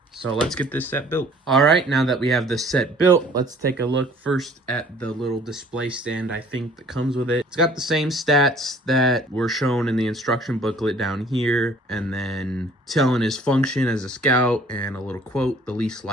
So let's get this set built. All right, now that we have the set built, let's take a look first at the little display stand I think that comes with it. It's got the same stats that were shown in the instruction booklet down here, and then telling his function as a scout, and a little quote, the least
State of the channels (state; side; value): normal; both; correlation 0.54